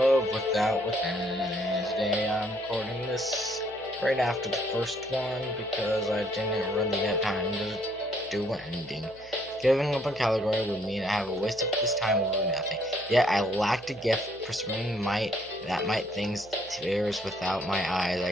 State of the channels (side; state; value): right; noise; hum, 24 dB below the sound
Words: Without Within. Today I'm recording this right after the first one because I didn't really have time to do an ending. Giving up on Caligari would mean I have a waste of this time over nothing. Yet I lacked a gift pursuing might that might things tears without my eyes. I